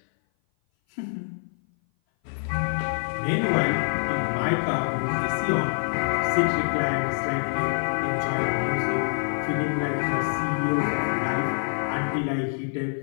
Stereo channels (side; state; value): right; silent; 57 dB below the other